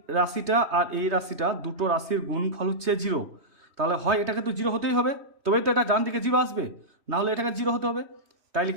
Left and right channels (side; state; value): left; late; 3.1 ms